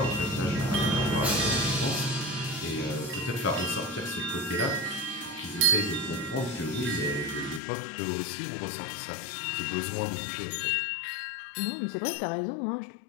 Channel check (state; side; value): drops out; right; at 7.6 s